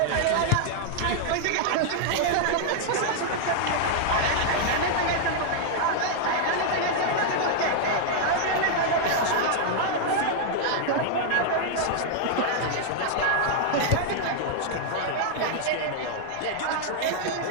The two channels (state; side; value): different; both; correlation -0.01